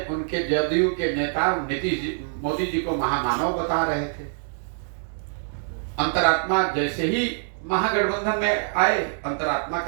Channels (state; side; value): silent; left; digital silence